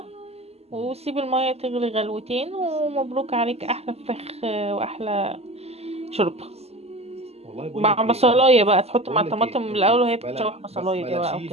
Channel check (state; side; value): late; left; 0.30 ms